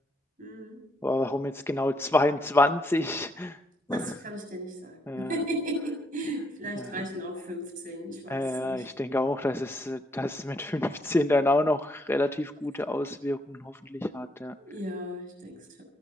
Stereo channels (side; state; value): both; normal; correlation 0.73